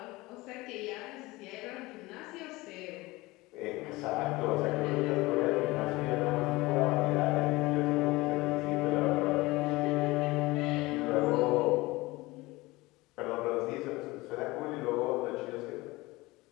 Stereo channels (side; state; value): right; quieter; 21.0 dB